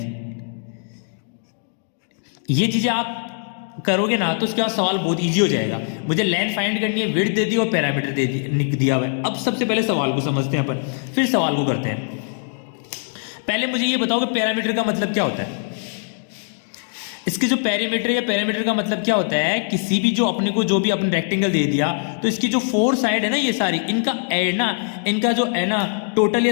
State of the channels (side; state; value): right; silent; 60 dB below the other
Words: ये चीजें आप करोगे ना तो उसके बाद सवाल बहुत इजी हो जाएगा। मुझे लेंथ फाइंड करनी है, विड्थ दे दी और पैरामीटर दे दिया हुआ है। अब सबसे पहले सवाल को समझते हैं अपन, फिर सवाल को करते हैं। पहले मुझे ये बताओ कि पैरामीटर का मतलब क्या होता है। इसके जो पैरामीटर या पैरामीटर का मतलब क्या होता है, किसी भी जो अपने को जो भी अपने रेक्टेंगल दे दिया, तो इसकी जो 4 साइड है ना, ये सारी इनका एड ना, इनका जो है ना टोटल